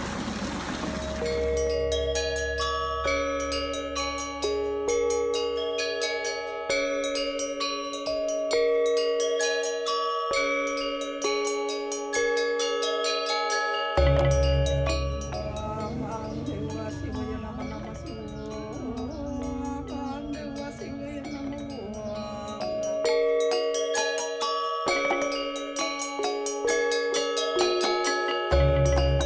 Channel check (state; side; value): identical; both; correlation 1.00